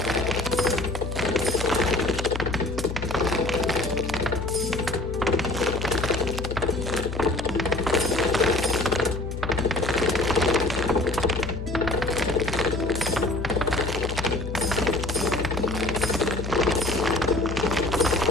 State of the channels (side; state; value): left; noise; hum, 6 dB below the sound